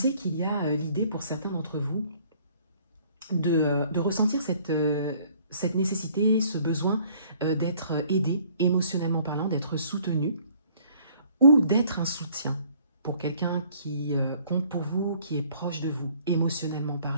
qu'il y a l'idée pour certains d'entre vous de ressentir cette nécessité, ce besoin d'être aidé émotionnellement parlant, d'être soutenu ou d'être un soutien pour quelqu'un qui compte pour vous, qui est proche de vous, émotionnellement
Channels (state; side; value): inverted; both; correlation -0.58